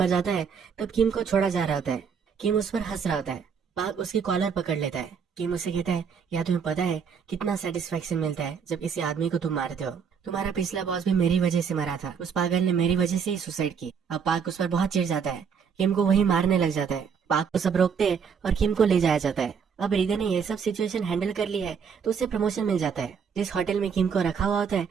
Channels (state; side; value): quieter; left; 6.6 dB